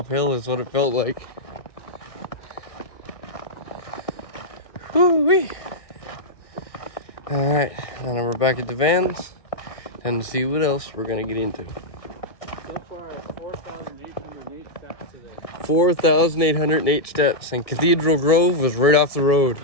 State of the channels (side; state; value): right; late; 1.6 ms